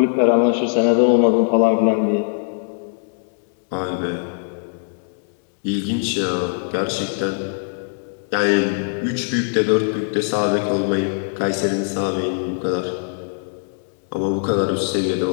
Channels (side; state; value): right; silent; digital silence